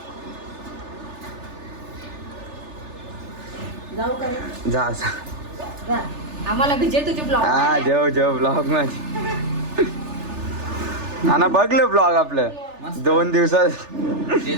जाऊ करे जा आम्हाला विजय तुझे ब्लॉग हा जेव ब्लॉग माझी ना बघलं ब्लॉग आपलं 2 दिवसात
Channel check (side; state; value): left; late; 3.4 ms